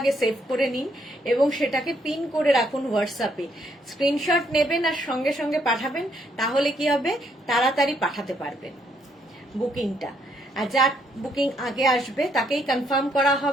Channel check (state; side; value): normal; both; correlation 0.71